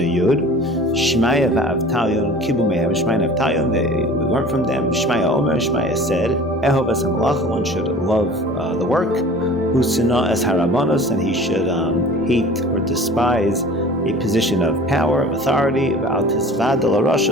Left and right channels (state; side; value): normal; both; correlation 0.43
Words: Yud. Shmaya va'avtalion kibumehem. Shmaya and Avtalion, we learned from them. Shmaya Omer, Shmaya said, Ehov es hamalacha, one should love the work. Usina es harabanos, and he should hate or despise a position of power, of authority. V'al tisvad el